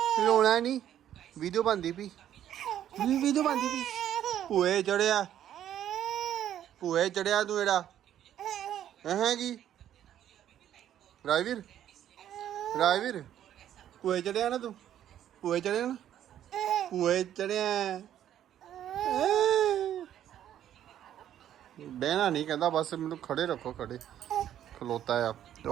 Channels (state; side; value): quieter; left; 11.0 dB